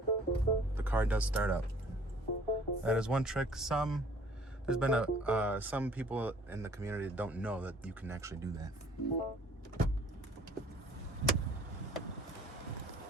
the car does start up. That is one trick. There's been some people in the community that don't know that you can actually do that.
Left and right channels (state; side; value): normal; both; correlation 0.55